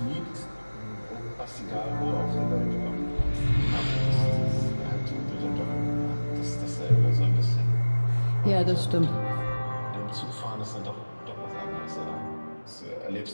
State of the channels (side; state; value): both; inverted; correlation -1.00